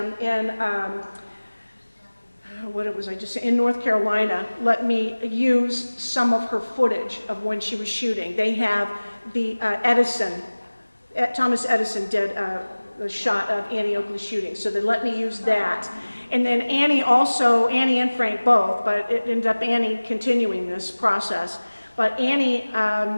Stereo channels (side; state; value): both; inverted; correlation -1.00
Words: in in North Carolina, let me use some of her footage of when she was shooting. They have the Thomas Edison did a shot of Annie Oakley shooting, so they let me use that. And then Annie and Frank both, but it ended up Annie continuing this process. But Annie